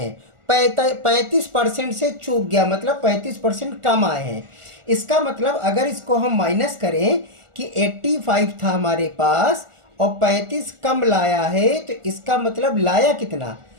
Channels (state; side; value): late; left; 1.4 ms